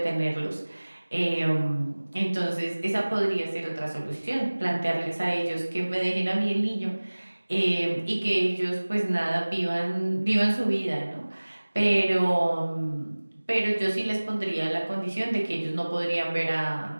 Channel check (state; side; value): inverted; both; correlation -1.00